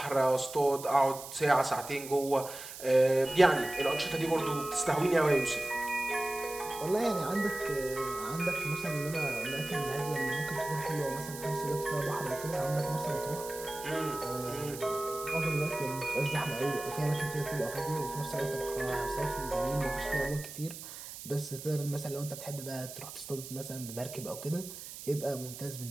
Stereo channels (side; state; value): right; noise; hiss, 12 dB below the sound